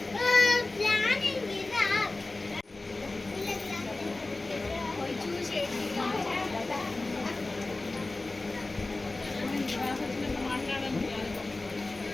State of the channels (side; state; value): right; quieter; 3.1 dB